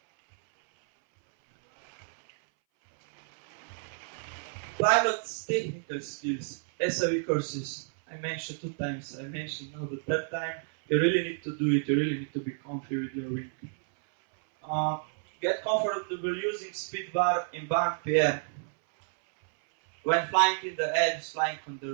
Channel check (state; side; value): silent; left; 58 dB below the other